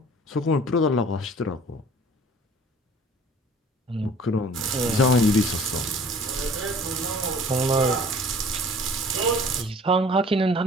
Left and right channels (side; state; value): both; normal; correlation 0.49